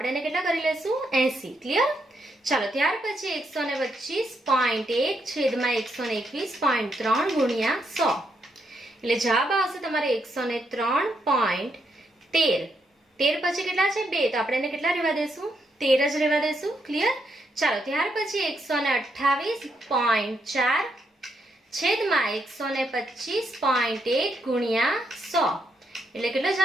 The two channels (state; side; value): normal; both; correlation 0.78